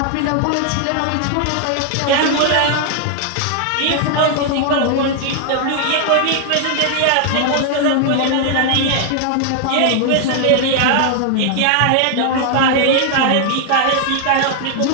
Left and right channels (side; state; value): both; different; correlation 0.00